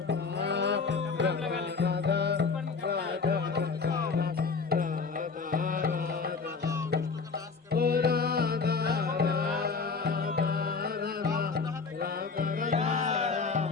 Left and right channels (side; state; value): right; quieter; 4.8 dB